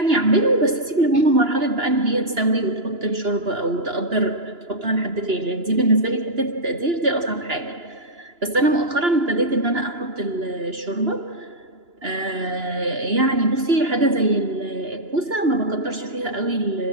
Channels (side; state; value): left; late; 2.9 ms